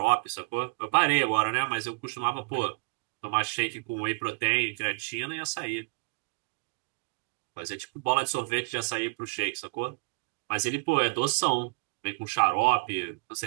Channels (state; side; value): quieter; left; 34.2 dB